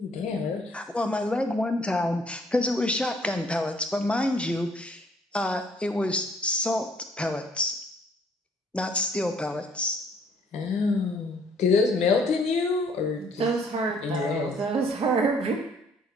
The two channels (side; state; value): both; normal; correlation 0.62